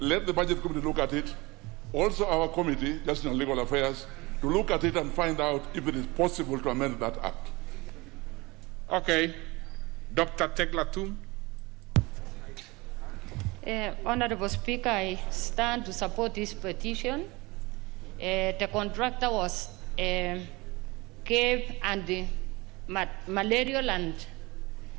the Budget Committee look at it, also our committee, Justice and Legal Affairs, to look at it and find out if it is possible to amend that act. Okay. Dr. Teglatum. Honorable Speaker, I stand to support this petition. The contractor was cave and malarial and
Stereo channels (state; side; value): quieter; left; 23.4 dB